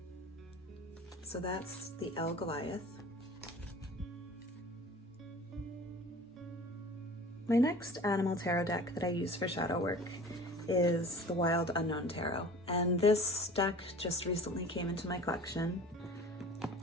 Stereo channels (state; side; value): normal; both; correlation 0.43